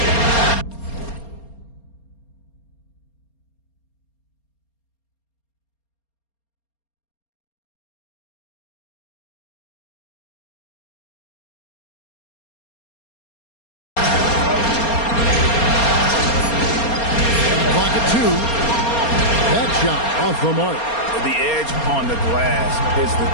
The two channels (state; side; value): late; right; 4.3 ms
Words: Off the mark. The edge on the glass is the